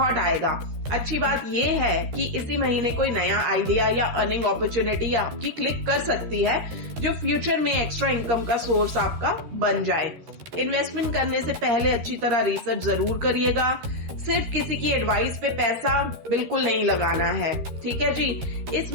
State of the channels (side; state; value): left; late; 13 ms